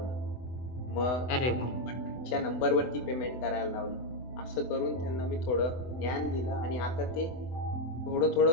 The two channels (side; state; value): right; late; 24 ms